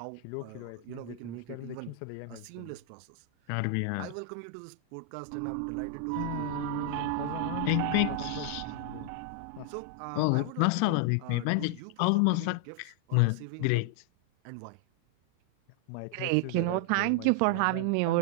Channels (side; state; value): both; different; correlation 0.00